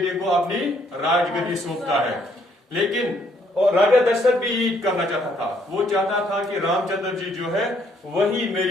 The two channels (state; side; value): normal; both; correlation 0.68